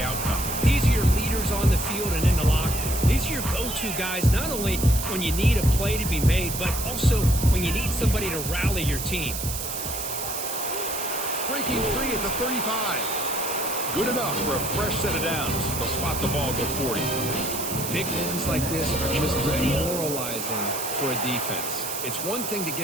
outcome. These are your leaders on the field and in the locker room. These are your go-to guys, not only when you need a play to be made, but also when you need somebody to rally your team. Breaking free at the 35. Good enough for a fresh set of downs. They'll spot the ball, go 40. Big wins like this are just demoralizing for a defense. It's one thing to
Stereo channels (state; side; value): noise; right; hiss, 5 dB below the sound